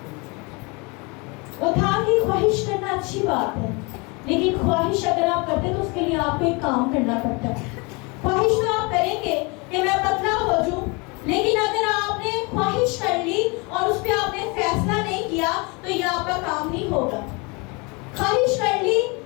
وہ تھا کہ خواہش کرنا اچھی بات ہے، لیکن خواہش اگر آپ کرتے تو اس کے لیے آپ کو ایک کام کرنا پڑتا ہے. خواہش تو آپ کریں گے کہ میں پتلا ہو جاؤں، لیکن اگر آپ نے خواہش کر لی اور اس پہ آپ نے فیصلہ نہیں کیا تو یہ آپ کا کام نہیں ہوگا. خواہش کر لی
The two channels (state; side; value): quieter; right; 28.7 dB